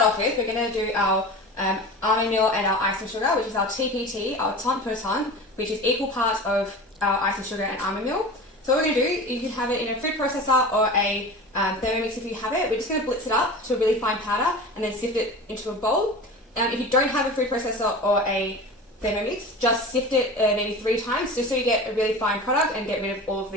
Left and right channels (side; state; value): both; normal; correlation 0.34